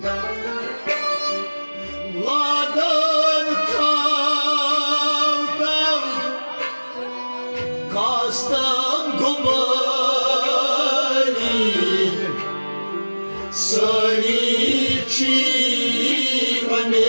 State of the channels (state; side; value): inverted; both; correlation -1.00